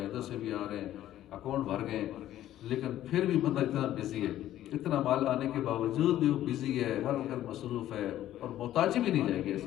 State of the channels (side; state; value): right; quieter; 12.9 dB